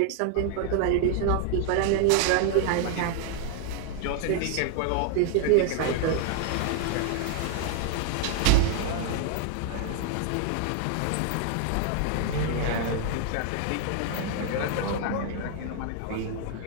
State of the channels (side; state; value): both; different; correlation 0.00